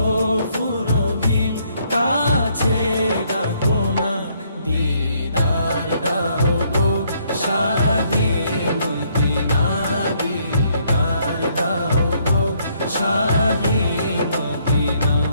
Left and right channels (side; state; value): both; inverted; correlation -0.69